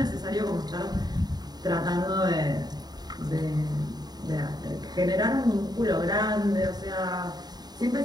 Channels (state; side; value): late; left; 0.20 ms